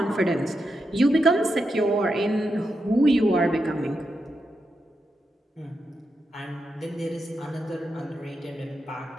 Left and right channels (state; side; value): normal; both; correlation 0.86